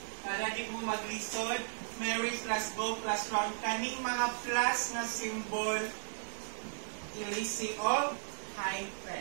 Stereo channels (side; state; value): left; silent; digital silence